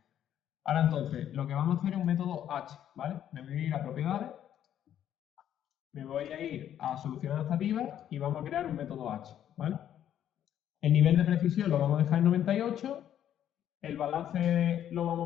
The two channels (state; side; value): quieter; right; 10.5 dB